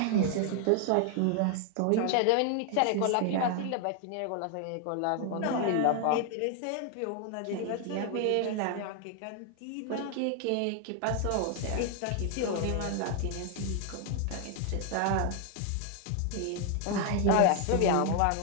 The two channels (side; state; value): both; different; correlation 0.00